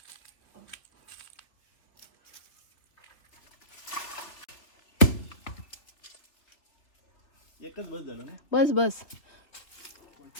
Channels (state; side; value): late; right; 3.4 ms